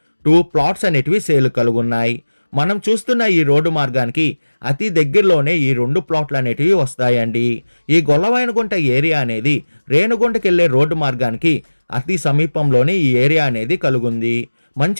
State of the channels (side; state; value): both; inverted; correlation -1.00